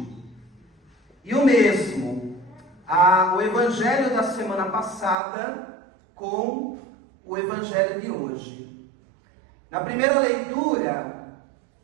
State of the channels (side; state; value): left; drops out; at 5.2 s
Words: E o mesmo, o evangelho da semana passada com o evangelho de hoje. Na primeira leitura